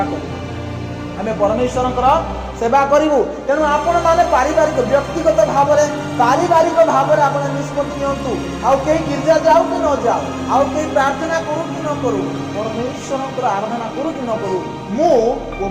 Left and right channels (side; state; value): both; identical; correlation 1.00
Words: करू आमे परमेश्वर सेवा करू। तेणु आपण माने पारिवारिक व्यक्तिगत भाव में पारिवारिक भाव में आप निष्पत्ति नियंतु। आउ कहीं गिरजा जाऊ कि न जाऊ, आउ कहीं प्रार्थना करू कि न करू, परमेश्वर आराधना करू कि न करू, मु ओ